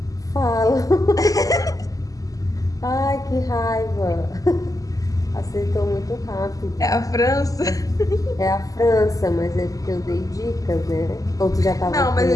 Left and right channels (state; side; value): late; right; 0.17 ms